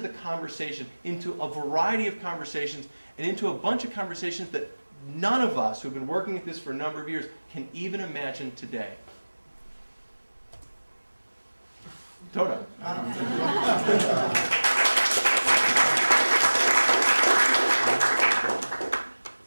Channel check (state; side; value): inverted; both; correlation -1.00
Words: the conversation, into a variety of conversations, and into a bunch of conversations that none of us who've been working at this for a number of years can even imagine today. Toda.